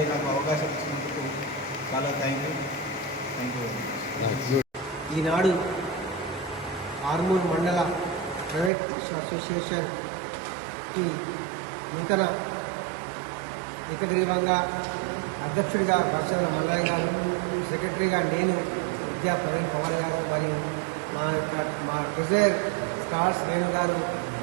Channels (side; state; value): left; drops out; at 8.7 s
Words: నాకు అవకాశం ఇచ్చినందుకు చాలా థ్యాంక్ యూ. ఈనాడు ఆర్మూర్ మండల ప్రైవేట్ అసోసియేషన్కి నూతన ఏకగ్రీవంగా అధ్యక్షుడిగా భరత్చంద్ర మల్లయ్య గారు, సెక్రటరీగా నేను, విద్యా ప్రవీణ్ పవార్ గారు మరియు మా ట్రెజరర్ స్టార్స్ వేణు గారు